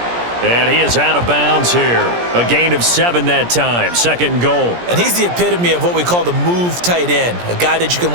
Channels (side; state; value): left; late; 17 ms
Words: And he is out of bounds here. A gain of 7 that time. 2nd and goal. And he's the epitome of what we call the move tight end. A guy that you can